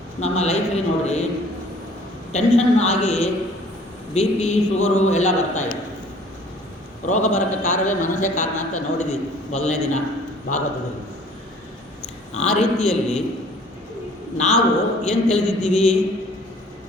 ನಮ್ಮ ಲೈಫಲ್ಲಿ ನೋಡಿರಿ ಟೆನ್ಷನ್ ಆಗಿ ಬಿ ಪಿ ಶುಗರು ಎಲ್ಲ ಬರ್ತಾಯಿದೆ. ರೋಗ ಬರೋಕ್ಕೆ ಕಾರಣವೇ ಮನಸ್ಸೇ ಕಾರಣ ಅಂತ ನೋಡಿದ್ದೀವಿ ಮೊದಲನೇ ದಿನ ಭಾಗವತದಲ್ಲಿ. ಆ ರೀತಿಯಲ್ಲಿ ನಾವು ಏನು ತಿಳಿದಿದ್ದೀವಿ,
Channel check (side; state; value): both; normal; correlation 0.53